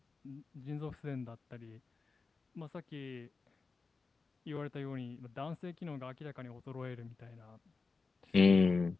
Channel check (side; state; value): right; quieter; 4.2 dB